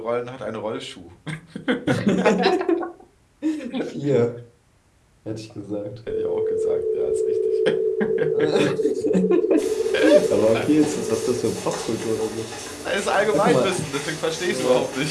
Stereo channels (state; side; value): identical; both; correlation 1.00